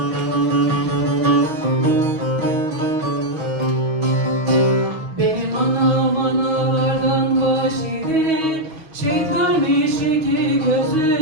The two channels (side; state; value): left; late; 6.3 ms